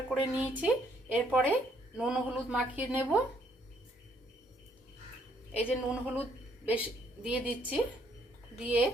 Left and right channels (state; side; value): normal; both; correlation 0.67